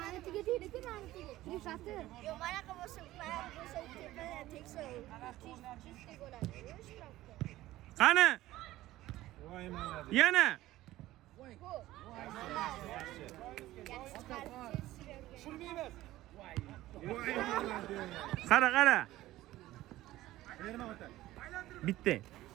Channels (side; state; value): left; quieter; 16.0 dB